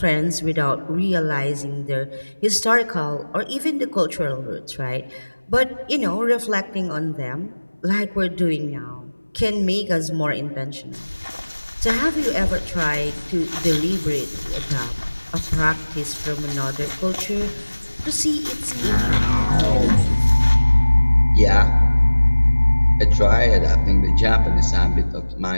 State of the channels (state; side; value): inverted; both; correlation -1.00